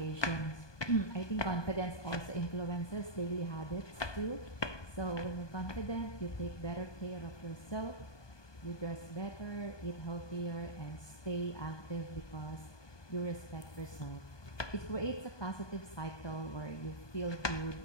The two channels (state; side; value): late; right; 1.2 ms